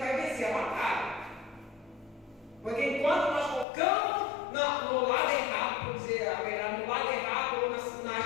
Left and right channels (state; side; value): drops out; right; at 3.7 s